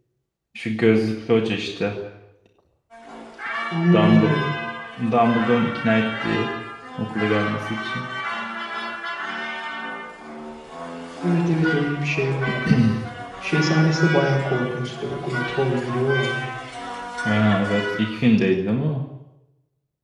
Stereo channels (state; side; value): identical; both; correlation 1.00